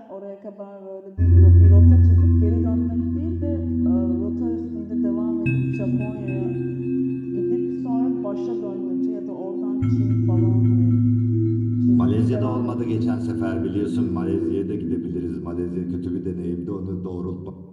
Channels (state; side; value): identical; both; correlation 1.00